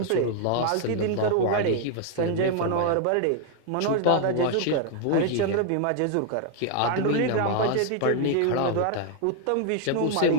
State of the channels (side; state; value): both; different; correlation 0.00